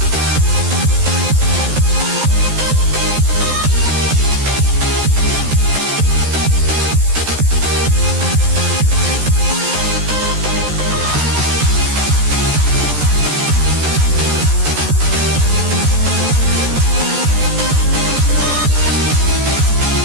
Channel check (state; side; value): late; left; 14 ms